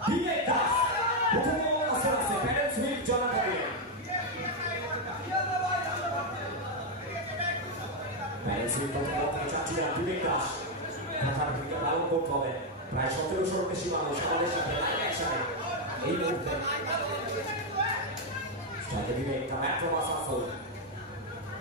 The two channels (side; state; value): both; normal; correlation 0.02